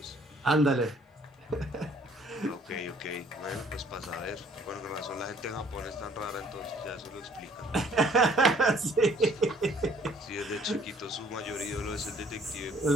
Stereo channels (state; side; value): normal; both; correlation 0.59